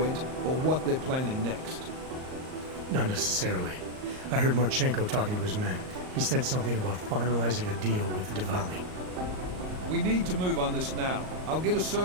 or what they're planning next. Not necessarily. I heard Marchenko talking to his men. He said something about finalizing a deal with the Diwali. We need to move on this now. I'll get a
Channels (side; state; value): left; late; 38 ms